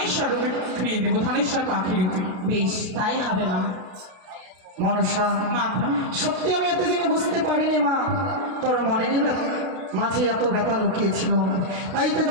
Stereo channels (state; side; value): late; left; 32 ms